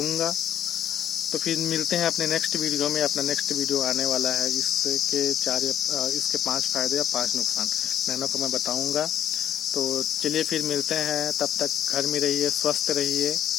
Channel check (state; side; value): quieter; right; 10.4 dB